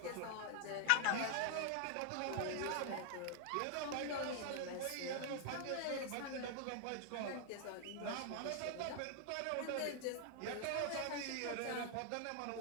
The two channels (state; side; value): different; both; correlation 0.00